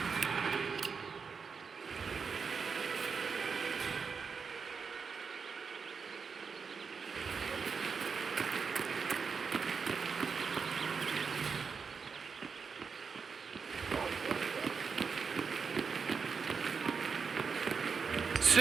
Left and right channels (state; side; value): quieter; left; 5.6 dB